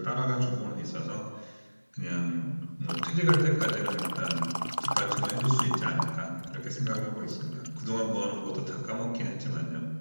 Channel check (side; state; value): both; inverted; correlation -1.00